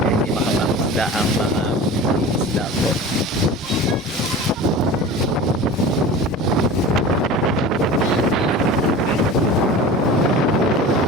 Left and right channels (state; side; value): normal; both; correlation 0.36